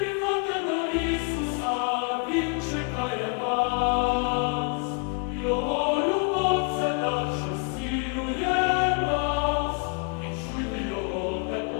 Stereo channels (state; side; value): quieter; right; 34.1 dB